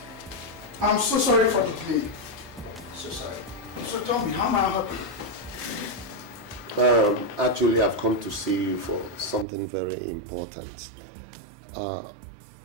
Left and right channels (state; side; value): drops out; left; at 9.5 s